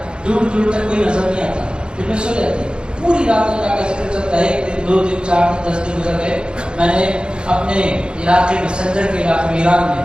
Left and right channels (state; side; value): late; left; 0.052 ms